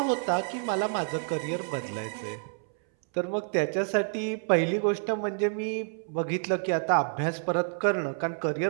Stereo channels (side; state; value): left; silent; 59 dB below the other